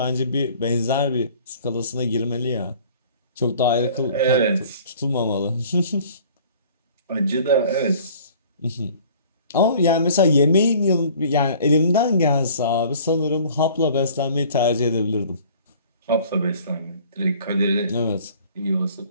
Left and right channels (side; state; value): both; inverted; correlation -0.51